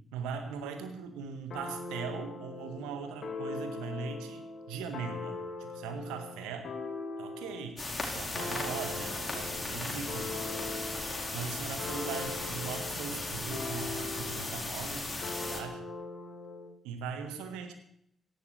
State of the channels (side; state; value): both; normal; correlation 0.67